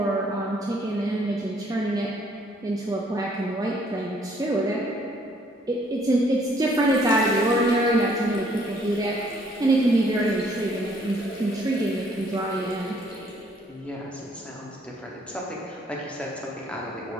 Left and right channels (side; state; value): both; normal; correlation 0.64